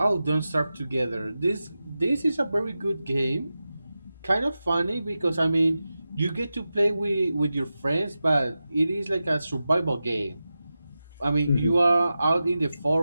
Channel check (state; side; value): inverted; both; correlation -0.93